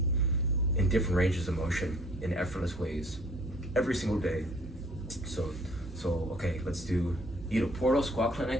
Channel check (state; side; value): normal; both; correlation 0.56